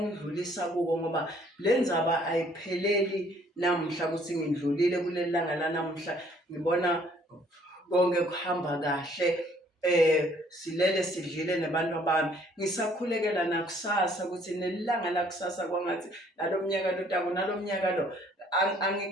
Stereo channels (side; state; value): both; normal; correlation 0.61